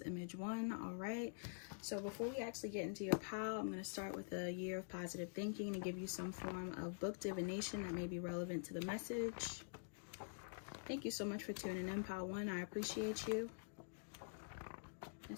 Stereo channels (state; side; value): silent; right; digital silence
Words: image 1. All right. So before we actually get into your pile, I'm going to start with a year of positive thinking to give you some form of book divination that may be relevant to the message. Thank you so much for tuning in, pile 1. I appreciate you.